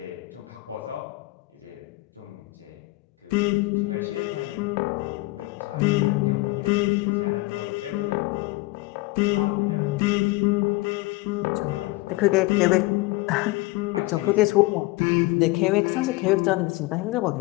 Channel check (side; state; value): right; quieter; 21.2 dB